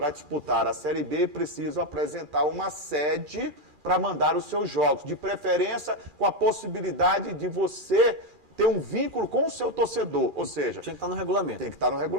disputar a Série B precisam apresentar uma sede para mandar os seus jogos, de preferência com a possibilidade de você ter um vínculo com o seu torcedor, ou seja... Tinha que estar no regulamento. Tem que estar no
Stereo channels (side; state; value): left; late; 2.4 ms